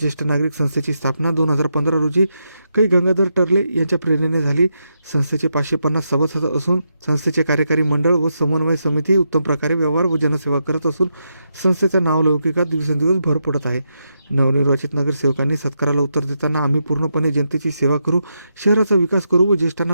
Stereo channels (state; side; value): inverted; both; correlation -0.84